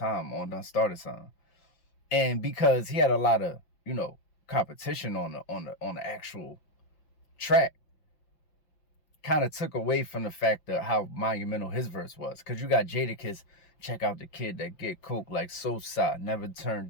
on Done Started Something. And because he had a lot of, competition on the actual track, kind of took away from the fact of how monumental his verse was. Because you got Jadakiss, check out the kid that get coke like Sosa, never turn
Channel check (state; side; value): late; right; 5.8 ms